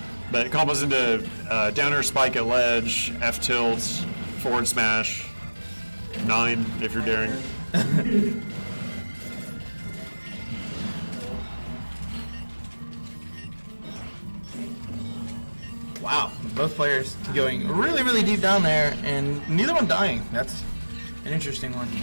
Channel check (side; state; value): both; inverted; correlation -1.00